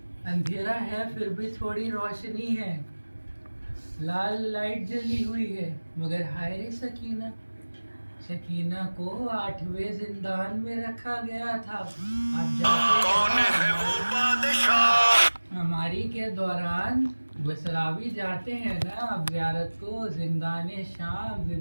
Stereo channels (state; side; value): inverted; both; correlation -1.00